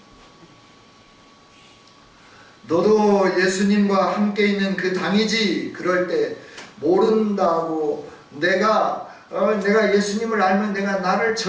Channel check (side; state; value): both; identical; correlation 1.00